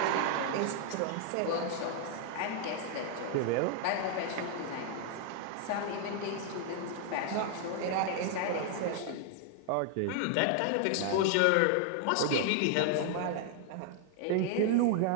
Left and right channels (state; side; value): different; both; correlation 0.00